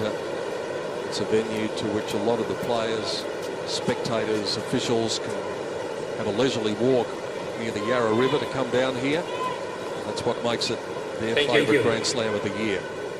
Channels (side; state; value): both; identical; correlation 1.00